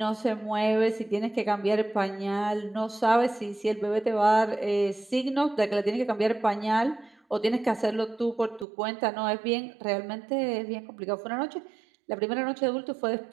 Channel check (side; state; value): left; drops out; at 8.7 s